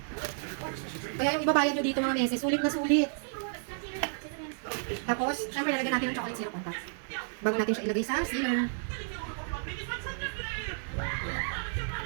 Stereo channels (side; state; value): left; silent; digital silence